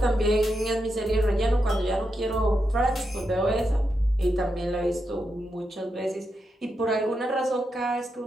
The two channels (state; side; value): normal; both; correlation 0.85